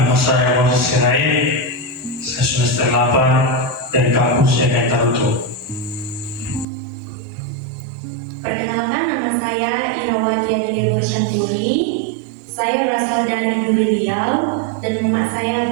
saya Moses Sirait. Saya semester 8 dari kampus IAKN Tarutu. Perkenalkan, nama saya Irawalia Bersanturi. Saya berasal dari Duri Riau dan mama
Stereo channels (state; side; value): drops out; left; at 6.7 s